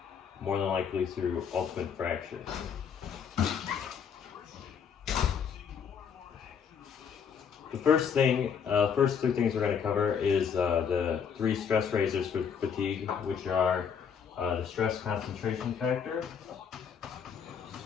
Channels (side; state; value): right; quieter; 7.1 dB